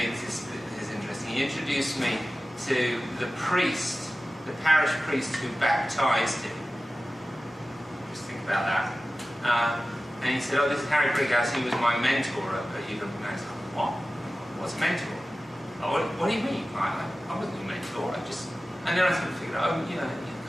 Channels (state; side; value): normal; both; correlation 0.96